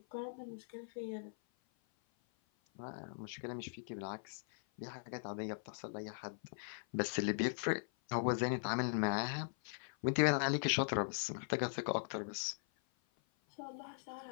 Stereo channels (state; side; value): silent; right; 51 dB below the other